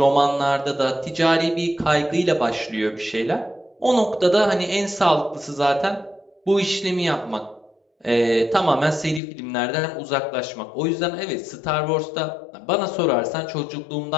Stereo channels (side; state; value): right; drops out; at 9.2 s